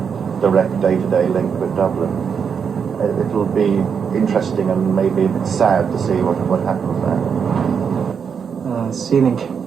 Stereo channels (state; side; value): quieter; left; 6.7 dB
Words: direct day-to-day link with Dublin. It will be interesting and maybe a bit sad to see what happens there. Sealink